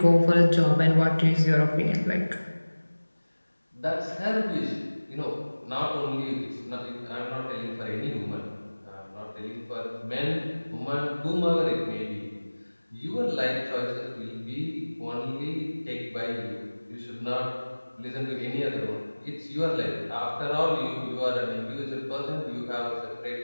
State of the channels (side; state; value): both; inverted; correlation -1.00